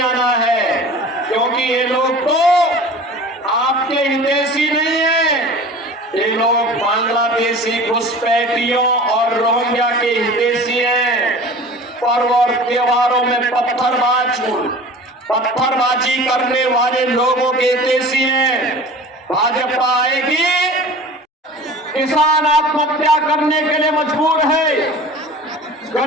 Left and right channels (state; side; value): normal; both; correlation 0.40